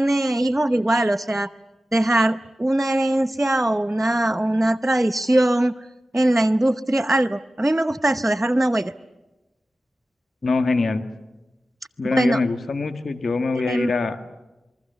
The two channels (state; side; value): normal; both; correlation 0.94